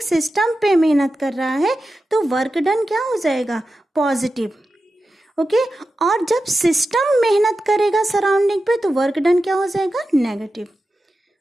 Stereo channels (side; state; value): both; normal; correlation 0.92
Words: सिस्टम पे मेहनत कर रहा है तो वर्क डन क्या हो जाएगा? पॉजिटिव। ओके। और जब सिस्टम मेहनत करेगा सराउंडिंग पे तो वर्क डन क्या हो जाएगा, नेगेटिव।